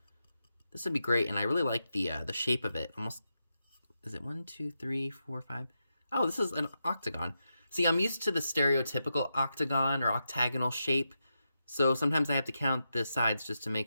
This would be great, and I really like the shape of it. Almost, is it 1, 2, 3, 4, 5? Oh, this is an octagon. See, I'm used to the stereotypical octagon or octagonal shape, so sometimes I have to count the sides just to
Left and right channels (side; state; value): both; inverted; correlation -0.87